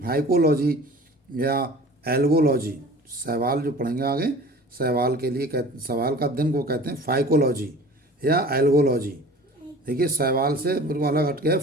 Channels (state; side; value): normal; both; correlation 0.43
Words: या एल्गोलॉजी, शैवाल जो पढ़ेंगे आगे, शैवाल के लिए शैवाल का अध्ययन को कहते हैं फाइकोलॉजी या एल्गोलॉजी। देखिए शैवाल से बिल्कुल अलग हटके है